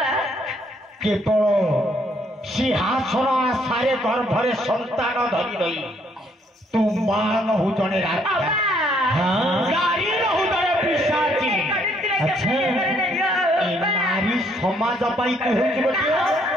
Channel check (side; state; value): both; normal; correlation 0.68